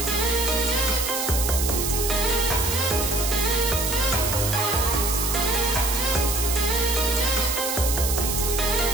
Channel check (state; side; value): noise; right; hiss, 2 dB below the sound